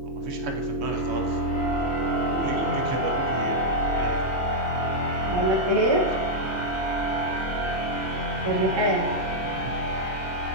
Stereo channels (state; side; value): normal; both; correlation -0.03